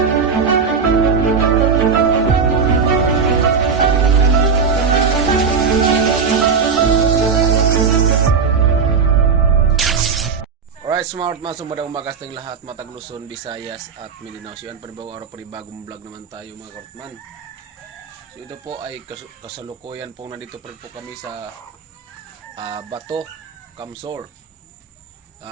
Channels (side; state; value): left; quieter; 5.7 dB